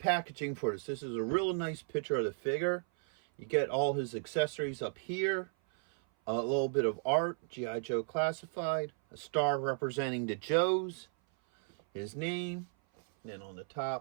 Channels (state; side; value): silent; left; 55 dB below the other